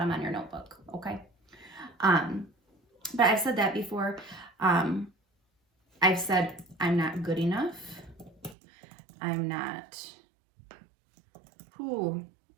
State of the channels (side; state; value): left; drops out; at 8.6 s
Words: on your notebook, okay? But I've said that before. I've said I'm not good enough. I'm not,